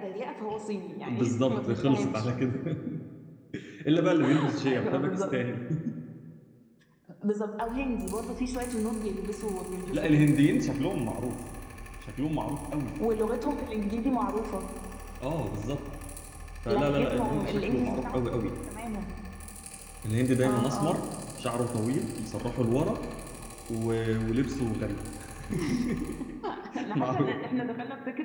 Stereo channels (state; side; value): identical; both; correlation 1.00